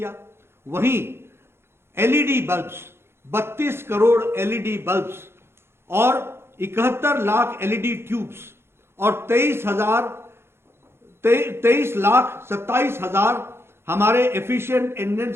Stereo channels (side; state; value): left; late; 0.12 ms